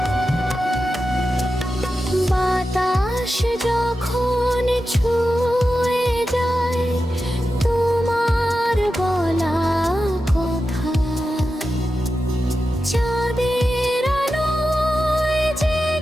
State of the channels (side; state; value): both; normal; correlation 0.91